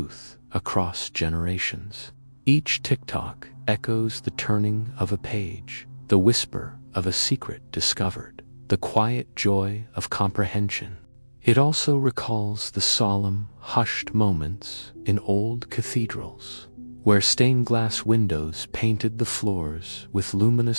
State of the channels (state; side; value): inverted; both; correlation -1.00